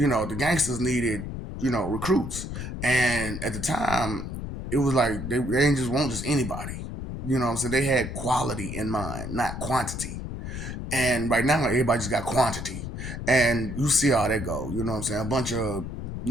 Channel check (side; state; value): left; noise; rumble, 7 dB below the sound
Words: gangsters needed, recruits. And at the time, it was like they didn't just want just anybody. You know what I'm saying? They had quality in mind, not quantity. And right now, everybody just got quantity. And you see how that go. You know what I'm saying? A bunch of